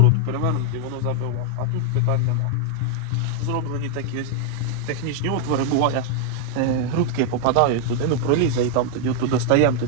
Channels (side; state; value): both; different; correlation 0.00